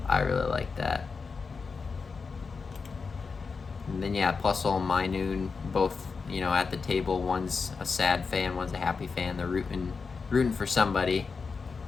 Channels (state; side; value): quieter; right; 4.9 dB